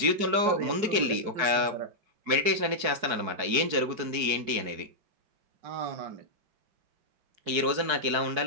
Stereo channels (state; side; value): late; left; 4.7 ms